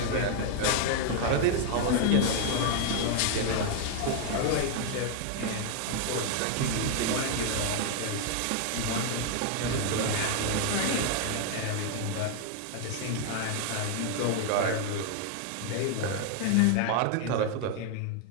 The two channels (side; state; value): both; different; correlation 0.00